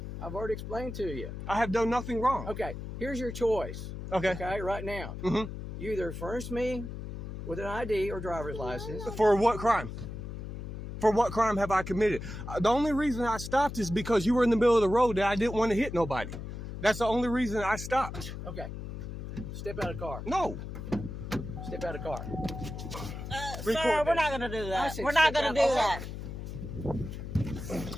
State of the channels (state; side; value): noise; left; hum, 8 dB below the sound